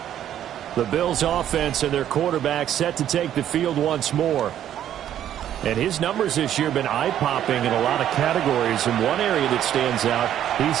The Bills offense and their quarterback set to take the field once more. And his numbers this year have been eye-popping in a lot of categories. In one area that stands out, he's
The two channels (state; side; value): quieter; left; 10.9 dB